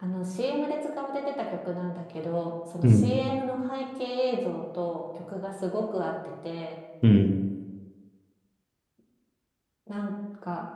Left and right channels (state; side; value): identical; both; correlation 1.00